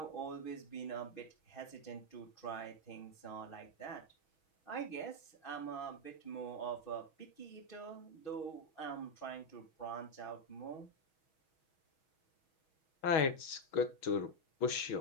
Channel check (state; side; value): late; right; 6.2 ms